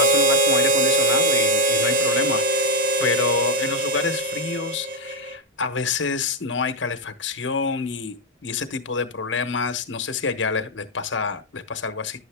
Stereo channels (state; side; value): normal; both; correlation 0.04